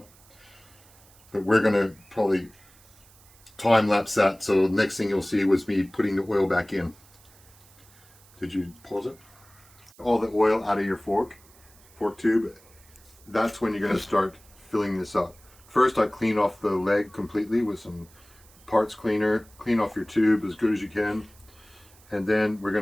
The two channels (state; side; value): noise; right; hiss, 27 dB below the sound